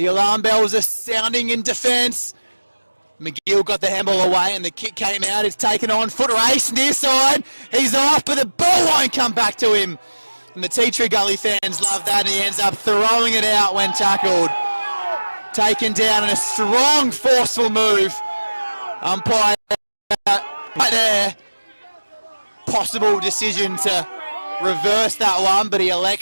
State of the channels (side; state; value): both; inverted; correlation -1.00